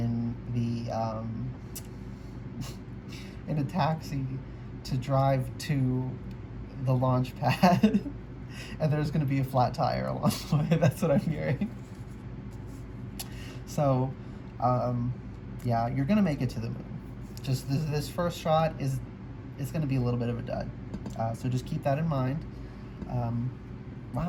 the in a taxi to drive to the launch pad. And there's going to be a flat tire along the way. That's what I'm hearing. So, yeah, you're going to make it to the moon. Just this first shot it's going to be a little bit of a dud. So just keep that in mind.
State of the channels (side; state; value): both; identical; correlation 1.00